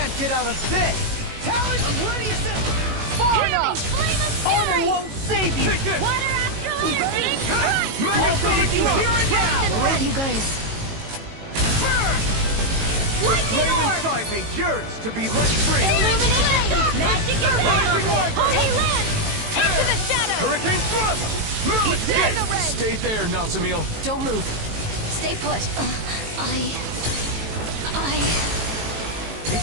get out of this! Talon, I'm ready as ever! Far enough! Armor won't save you! Take this! Water after lightning! Mega Sonic You Thrust! hear it now! Where are you guys? The flame inside me yearns to be let free! Illuminate the dark! Magic is Rising power! Wyvern! Holy land! Into the shadows! Hurricane Thrust! Now escape! Stay there, Nazamil. Don't move. Stay put.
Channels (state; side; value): late; left; 18 ms